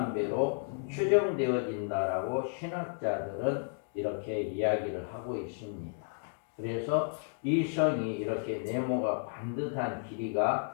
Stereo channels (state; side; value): silent; right; digital silence